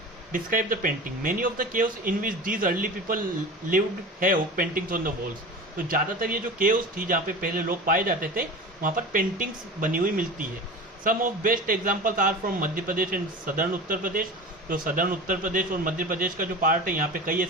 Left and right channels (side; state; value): both; normal; correlation 0.33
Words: Describe the painting, many of the caves in which these early people lived have paintings on the walls, तो ज़्यादातर ये जो केव्स थी जहाँ पे पहले लोग पाए जाते थे, वहाँ पर पेंटिंग्स बनी हुई मिलती है। Some of best examples are from Madhya Pradesh and southern Uttar Pradesh, तो सदर्न उत्तर प्रदेश और मध्य प्रदेश का जो पार्ट है यहाँ पे कई